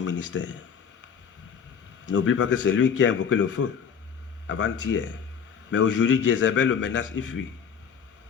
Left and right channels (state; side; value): quieter; right; 7.1 dB